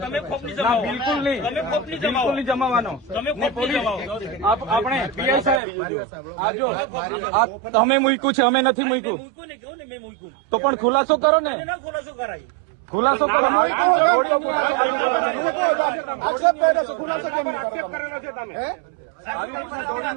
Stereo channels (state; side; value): drops out; left; at 5.6 s